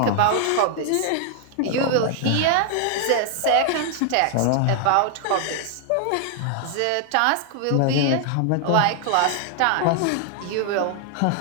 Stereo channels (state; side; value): different; both; correlation 0.00